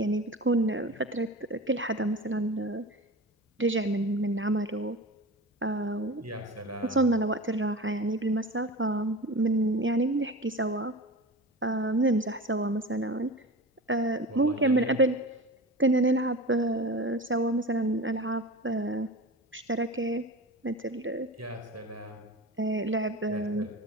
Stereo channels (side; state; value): both; normal; correlation 0.32